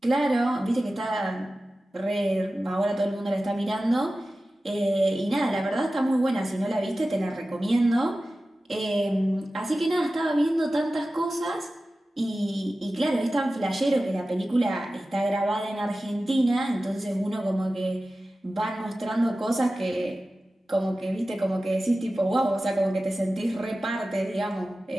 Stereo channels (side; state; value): both; normal; correlation 0.95